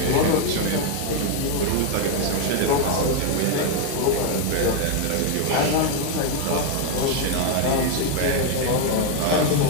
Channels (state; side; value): different; both; correlation 0.01